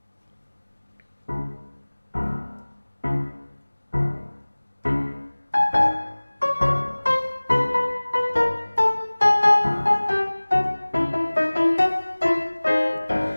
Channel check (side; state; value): both; inverted; correlation -1.00